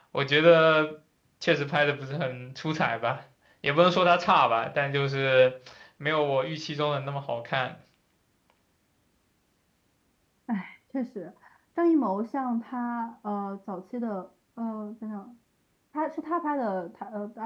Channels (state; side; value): identical; both; correlation 1.00